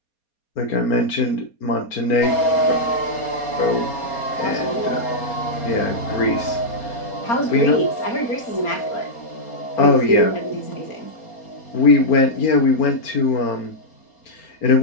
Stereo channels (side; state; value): right; late; 4.3 ms